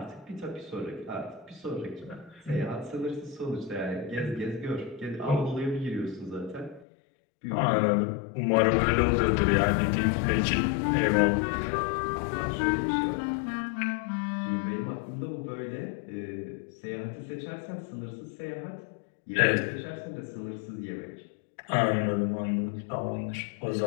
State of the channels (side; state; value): right; drops out; at 6.9 s